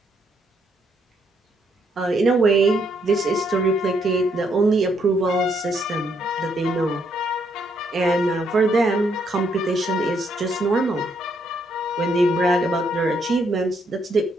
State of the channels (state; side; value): normal; both; correlation 0.73